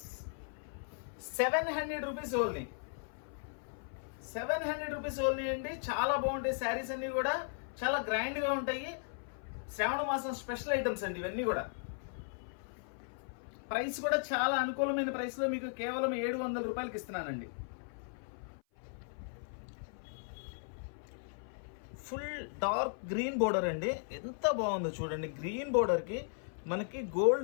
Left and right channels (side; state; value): right; silent; 53 dB below the other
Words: 700 rupees only. 700 rupees only అండి. చాలా బాగుంటాయి శారీస్ అన్నీ కూడా, చాలా గ్రాండ్గా ఉంటాయి. శ్రావణ మాసం స్పెషల్ ఐటమ్స్ అండి ఇవన్నీ కూడా. ప్రైస్ కూడా చాలా అనుకూలమైన ప్రైస్లో మీకు కేవలం 700 రూపాయలకి ఇస్తున్నానండి. ఫుల్ డార్క్ గ్రీన్ బోర్డర్ అండి, ఎంత బాగుందో చూడండి. గ్రీన్ బోర్డర్కి మనకి